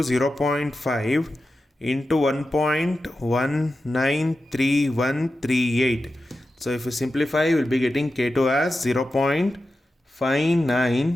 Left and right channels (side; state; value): both; normal; correlation 0.92